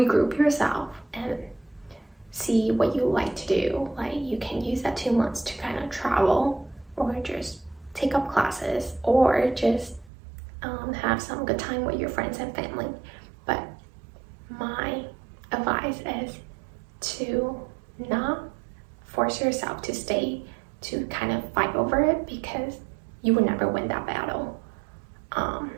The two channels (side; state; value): left; drops out; at 10.1 s